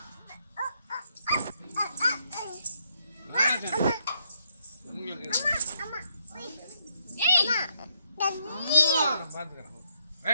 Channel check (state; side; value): inverted; both; correlation -0.74